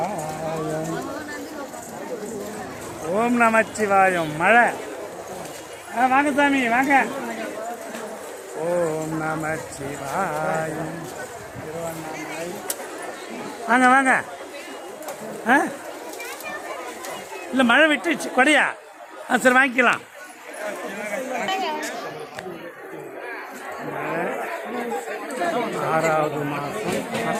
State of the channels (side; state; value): both; identical; correlation 1.00